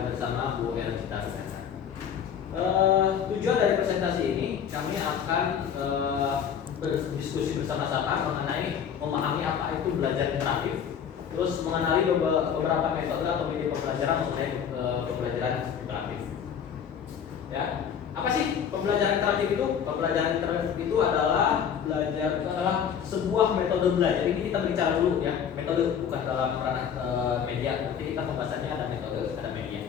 bersama Bu Ercita. Tujuan dari presentasi ini kami akan berdiskusi bersama-sama mengenai memahami apa itu belajar interaktif, terus mengenali beberapa metode atau media pembelajaran mengenai pembelajaran interaktif. Ya, apa sih pembelajaran interaktif itu? Pembelajaran interaktif itu adalah sebuah metode belajar. Ini kita bicara dulu ya, metode bukan dalam ranah media. Nanti kita pembahasannya ada metode, ada media.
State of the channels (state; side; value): quieter; right; 8.0 dB